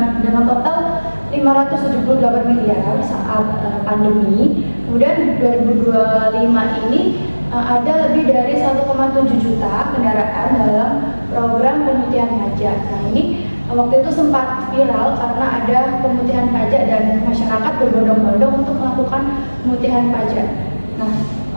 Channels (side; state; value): both; inverted; correlation -1.00